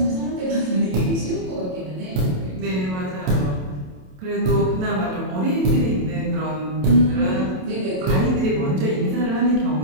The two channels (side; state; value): left; late; 27 ms